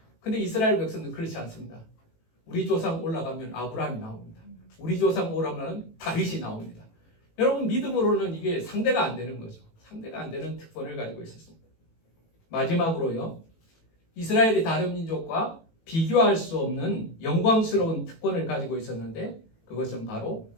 근데 이스라엘 백성은 그렇지 않습니다. 우리 조상 올라가면 아브라함이 나옵니다. 우리 조상 올라가면 다윗이 나옵니다. 여러분, 믿음으로는 이게 상대가 안 되는 거죠. 상대가 안 되는 특권을 가지고 있었습니다. 마지막으로요, 이스라엘이 다른 민족과 비교할 수 없는 영광스러운 특권을 가지고 있었는데, 그것은 바로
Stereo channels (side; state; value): right; late; 18 ms